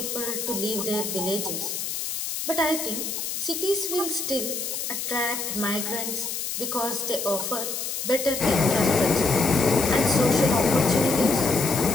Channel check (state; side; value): noise; left; hiss, 4 dB below the sound